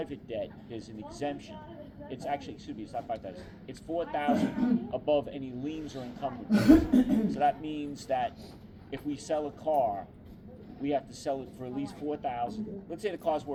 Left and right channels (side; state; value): both; identical; correlation 1.00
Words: debt, there's an exemption. It's actually, excuse me, it's not $5,000. It's $4,000 above any liens or encumbrances. So that means that if we sell a car, we have to sell it for at least $4,000. Let's say the car's